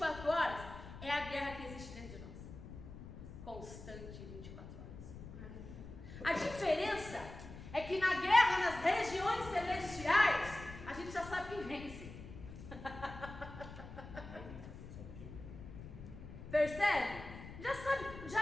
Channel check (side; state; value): left; noise; rumble, 13 dB below the sound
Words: horas, é a guerra que existe dentro de nós. Constante, 24 horas. A diferença é que na guerra, nas regiões celestiais, a gente já sabe quem vence. Percebe? Já sabe,